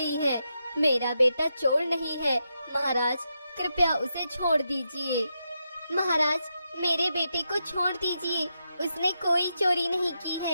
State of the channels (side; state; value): both; inverted; correlation -0.84